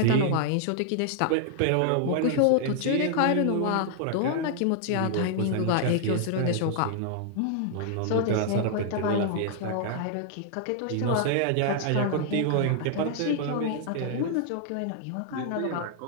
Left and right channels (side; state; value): both; different; correlation 0.00